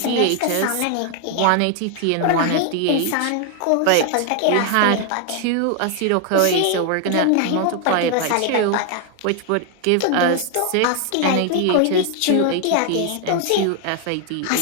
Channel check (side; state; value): both; different; correlation 0.00